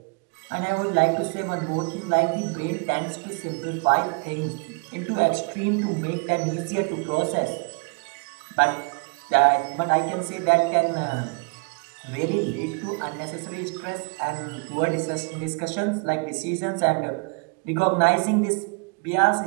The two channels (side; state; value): left; quieter; 34.2 dB